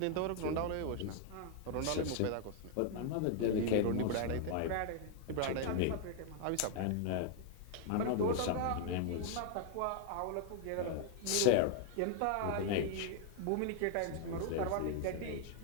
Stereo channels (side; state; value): both; different; correlation 0.00